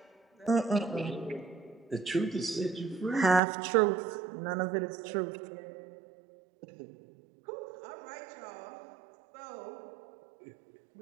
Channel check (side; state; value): left; drops out; at 3.4 s